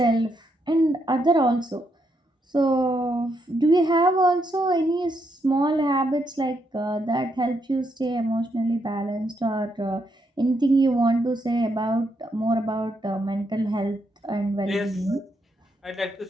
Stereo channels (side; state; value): both; normal; correlation 0.78